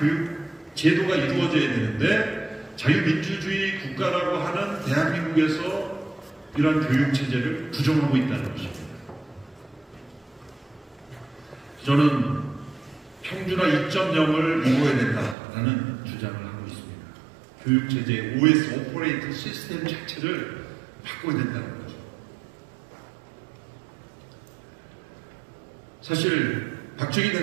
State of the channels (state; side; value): drops out; left; at 15.4 s